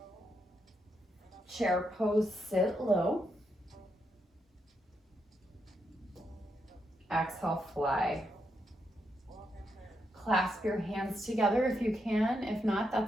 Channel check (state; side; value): normal; both; correlation 0.81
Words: Chair pose, sit low. Exhale, fly. Clasp your hands together if you can. If not,